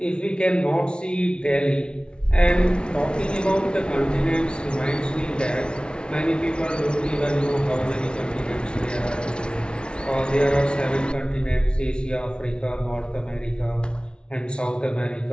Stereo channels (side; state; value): right; late; 0.056 ms